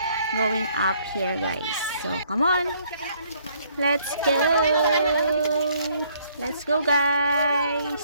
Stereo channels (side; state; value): both; inverted; correlation -0.65